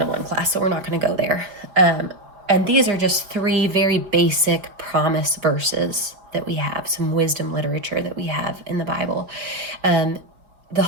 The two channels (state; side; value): late; left; 5.0 ms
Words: class, so we're not going to go there. And these are just 3 very basic promise verses that we have, some wisdom literature that we have in the Bible. The